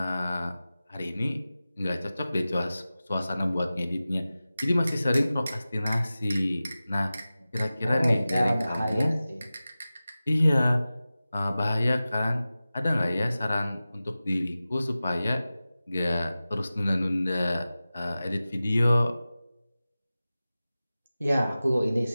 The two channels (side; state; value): both; inverted; correlation -0.96